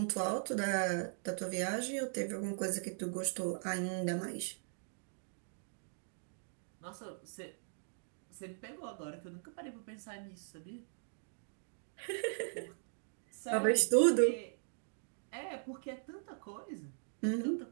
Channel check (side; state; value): left; silent; digital silence